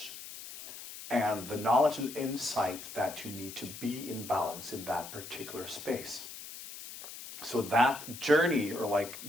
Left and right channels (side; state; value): left; noise; hiss, 12 dB below the sound